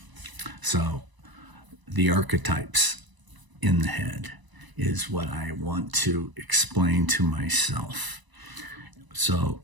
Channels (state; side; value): late; left; 1.0 ms